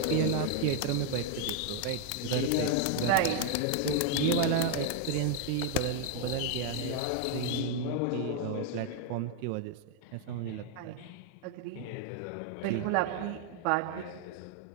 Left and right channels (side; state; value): both; different; correlation 0.01